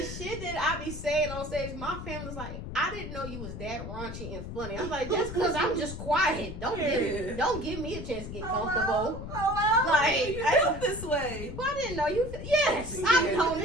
shit that I be saying on stage, my family's like, I didn't know you was that raunchy and funny. I'm like, just because I'm just quiet, don't give me a chance to get comfortable. Like, I felt this way. Well, I didn't know you. Yes, I've been on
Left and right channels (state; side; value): noise; left; rumble, 8 dB below the sound